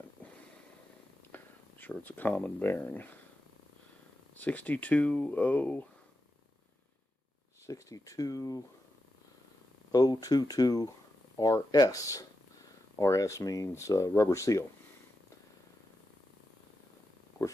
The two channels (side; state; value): both; normal; correlation 0.88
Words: I'm sure it's a common bearing. 62022 RS. RS means rubber seal. Of